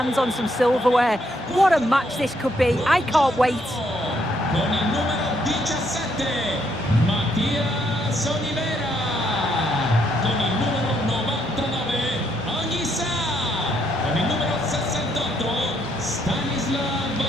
on some silverware. What a match this could be. I can't wait. Con il numero 17, Mattias Olivera. Con il numero 99, Anissa. Con il numero 68, Stanislav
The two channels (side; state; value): both; normal; correlation 0.73